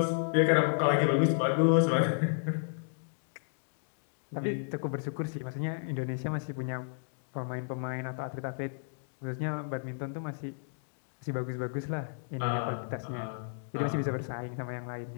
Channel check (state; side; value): silent; right; digital silence